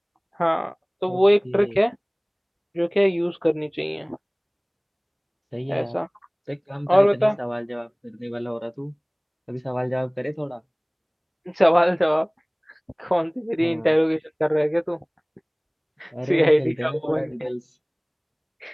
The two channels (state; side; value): identical; both; correlation 1.00